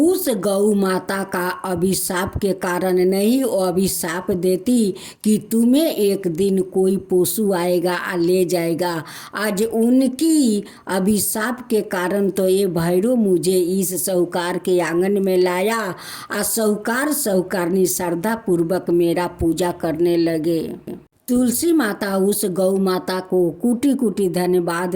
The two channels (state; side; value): identical; both; correlation 1.00